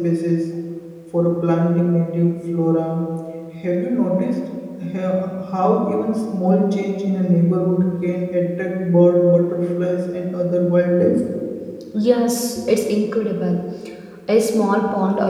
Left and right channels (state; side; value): identical; both; correlation 1.00